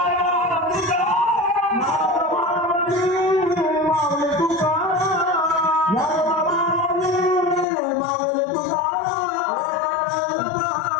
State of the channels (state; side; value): drops out; right; at 7.7 s